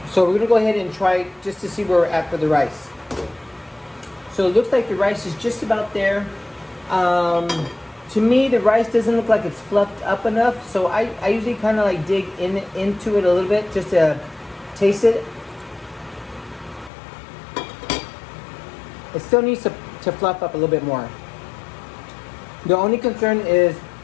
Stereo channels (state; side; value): drops out; right; at 16.9 s